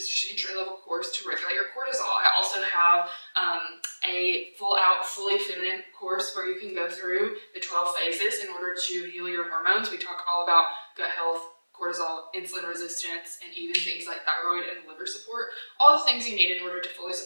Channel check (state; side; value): inverted; both; correlation -1.00